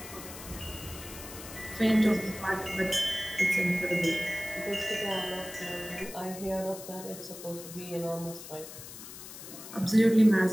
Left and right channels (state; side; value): noise; left; hiss, 13 dB below the sound